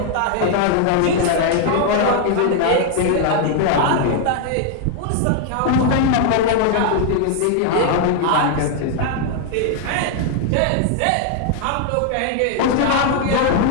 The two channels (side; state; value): both; different; correlation 0.00